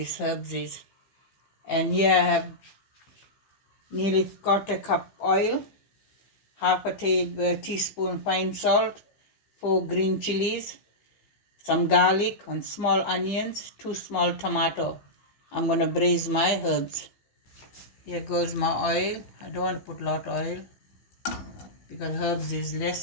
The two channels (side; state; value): right; late; 15 ms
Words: herbs is. And here I have nearly quarter cup oil, half a teaspoon fine salt, 4 green chilies, some garlic and small onions, 2 small tomato. I'm going to braise my herbs. Here goes my oil. I don't want to put a lot of oil because herbs is